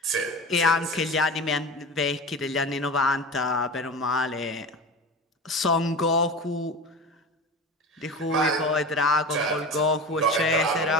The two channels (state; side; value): normal; both; correlation 0.30